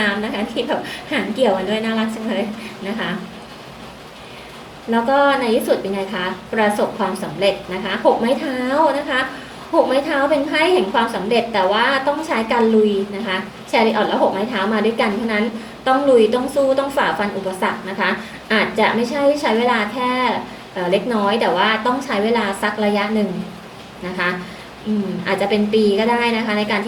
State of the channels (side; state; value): both; identical; correlation 1.00